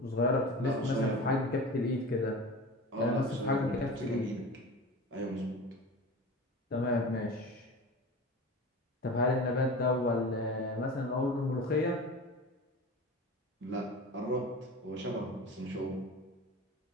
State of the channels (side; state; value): both; normal; correlation 0.33